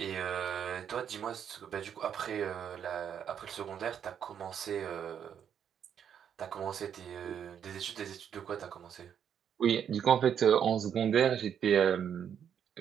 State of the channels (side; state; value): left; quieter; 8.5 dB